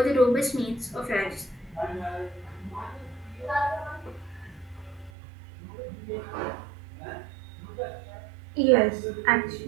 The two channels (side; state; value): left; drops out; at 5.1 s